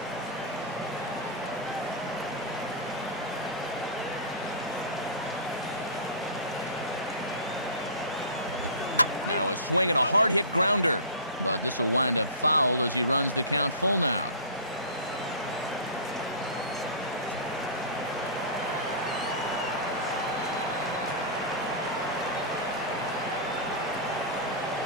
Now a swing and a hard-hit grounder. But this will wind up foul as he runs the count full now.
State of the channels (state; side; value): inverted; both; correlation -0.33